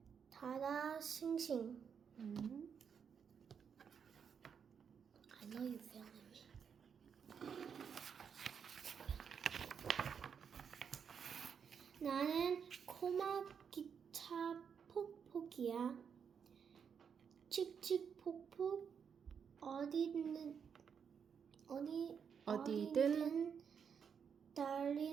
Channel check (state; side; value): quieter; left; 7.0 dB